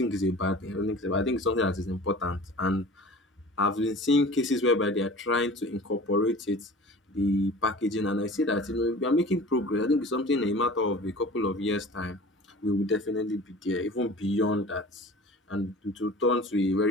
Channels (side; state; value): both; normal; correlation 0.41